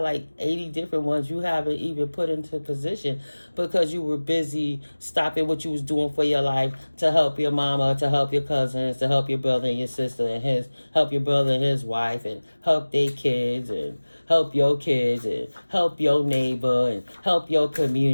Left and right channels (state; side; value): inverted; both; correlation -1.00